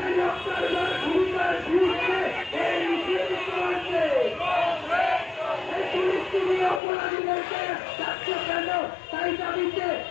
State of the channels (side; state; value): right; drops out; at 6.8 s